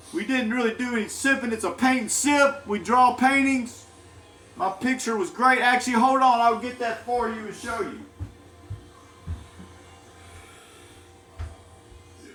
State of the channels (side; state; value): both; identical; correlation 1.00